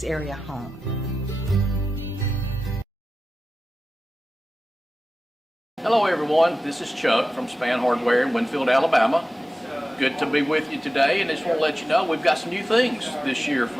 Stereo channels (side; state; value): both; normal; correlation 0.94